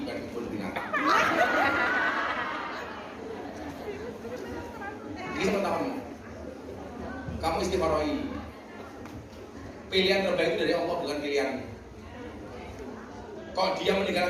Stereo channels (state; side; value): identical; both; correlation 1.00